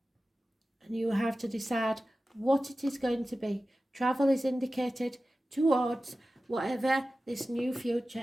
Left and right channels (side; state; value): both; normal; correlation 0.95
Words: and you have to decide what it is going to be. Travel is indicated towards whatever this new